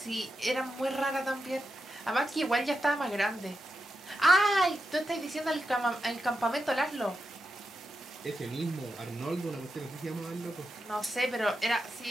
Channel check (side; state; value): both; normal; correlation 0.87